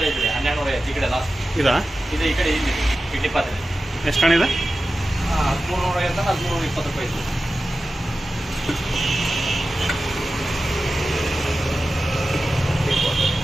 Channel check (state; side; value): normal; both; correlation 0.94